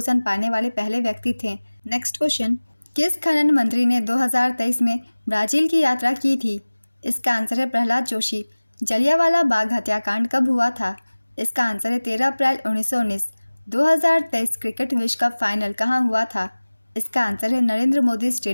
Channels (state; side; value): inverted; both; correlation -1.00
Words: पाने वाले पहले व्यक्ति थे। नेक्स्ट क्वेश्चन, किस खनन मंत्री ने 2023 में ब्राज़ील की यात्रा की थी? इसका आंसर है प्रहलाद जोशी। जलियांवाला बाग हत्याकांड कब हुआ था? इसका आंसर है 13 अप्रैल 1919। 2023 क्रिकेट विश्व कप फाइनल कहाँ हुआ था? इसका आंसर है नरेंद्र मोदी